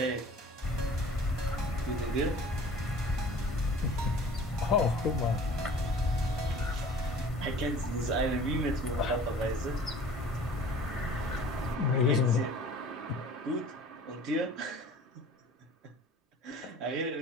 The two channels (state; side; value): normal; both; correlation 0.46